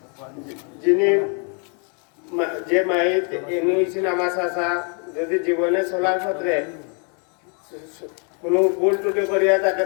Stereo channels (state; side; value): quieter; right; 38.2 dB